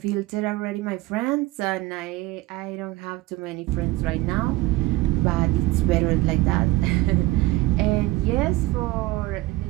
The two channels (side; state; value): left; quieter; 18.5 dB